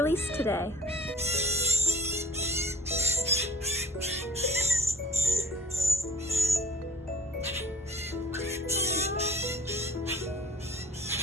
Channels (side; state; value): both; normal; correlation 0.46